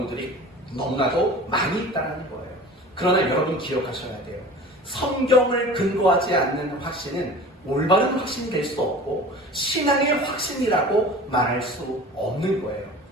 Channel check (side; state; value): both; normal; correlation 0.39